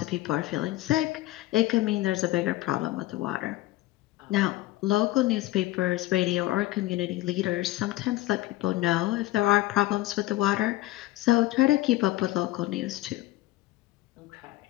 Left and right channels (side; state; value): right; quieter; 17.1 dB